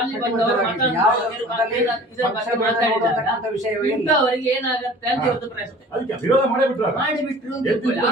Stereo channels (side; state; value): both; normal; correlation 0.45